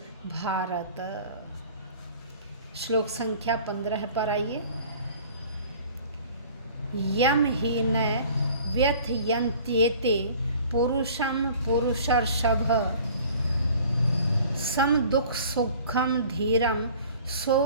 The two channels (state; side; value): inverted; both; correlation -0.48